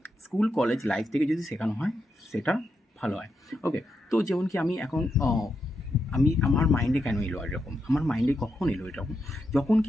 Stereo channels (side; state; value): both; normal; correlation 0.84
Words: স্কুল কলেজ লাইফ থেকে যদি শেখানো হয় সেটা ভালো হয়। ওকে, তো যেমন কি আমি এখন আমার মাইন্ডে কেন এলো এরকম, আমার মাইন্ডে কখন এলো এরকম,